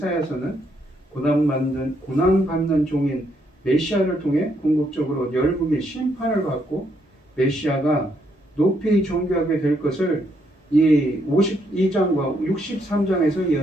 고난받는 종인 메시아를 통해 궁극적으로 열국이 심판을 받고 메시아가 높이 존귀하게 될 것을 이 52장과 63장에서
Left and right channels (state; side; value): normal; both; correlation 0.74